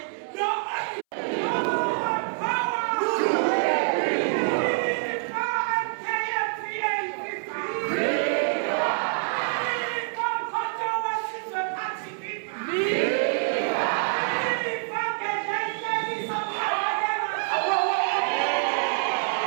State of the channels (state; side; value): silent; left; 61 dB below the other